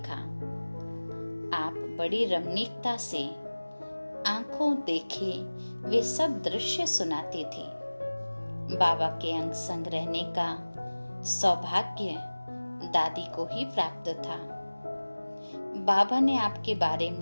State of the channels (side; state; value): both; inverted; correlation -1.00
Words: आप बड़ी रमणीकता से आंखों देखे वे सब दृश्य सुनाती थी। बाबा के अंग संग रहने का सौभाग्य दादी को ही प्राप्त था। बाबा ने आपके बारे